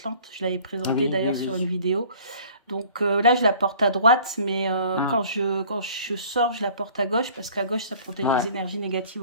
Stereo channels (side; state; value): both; inverted; correlation -0.51